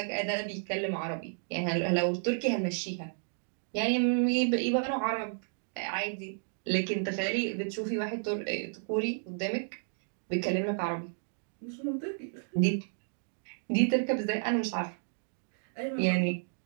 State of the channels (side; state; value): left; silent; digital silence